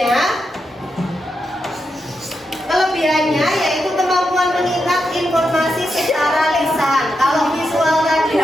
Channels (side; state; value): both; normal; correlation 0.86